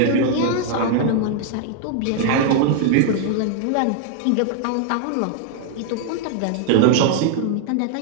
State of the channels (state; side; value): different; both; correlation 0.00